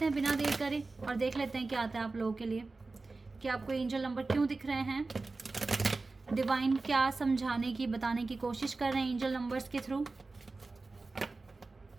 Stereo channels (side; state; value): left; quieter; 3.6 dB